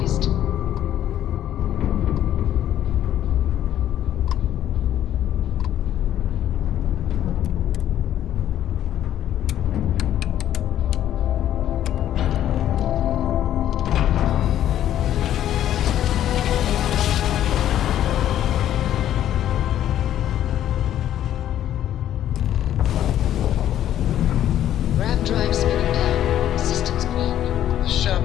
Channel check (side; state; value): right; quieter; 11.5 dB